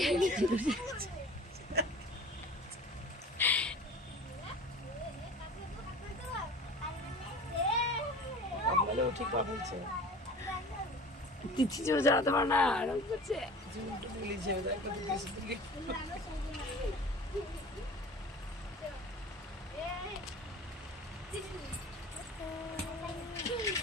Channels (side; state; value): both; normal; correlation 0.40